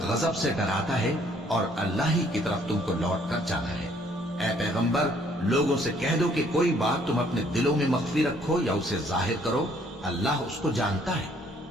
غضب سے ڈراتا ہے، اور اللہ ہی کی طرف تم کو لوٹ کر جانا ہے۔ اے پیغمبر، لوگوں سے کہہ دو کہ کوئی بات تم اپنے دلوں میں مخفی رکھو یا اسے ظاہر کرو، اللہ اس کو جانتا ہے،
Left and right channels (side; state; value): both; normal; correlation 0.63